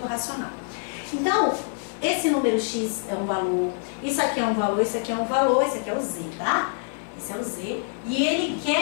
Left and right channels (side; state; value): right; silent; 61 dB below the other